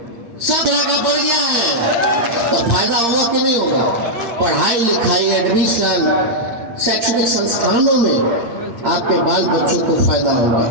सब जगह बढ़ गया है। तो फायदा होगा कि नहीं होगा? पढ़ाई लिखाई, एडमिशन, शैक्षणिक संस्थानों में आपके बाल बच्चों को फायदा होगा।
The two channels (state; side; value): late; left; 8.6 ms